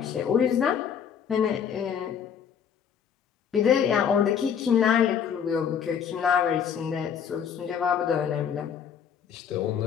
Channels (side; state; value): right; quieter; 7.9 dB